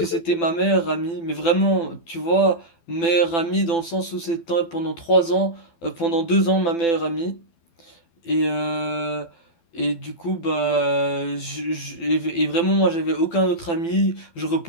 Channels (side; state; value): right; late; 12 ms